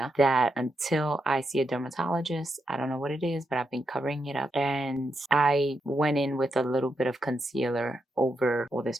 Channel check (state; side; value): normal; both; correlation 0.83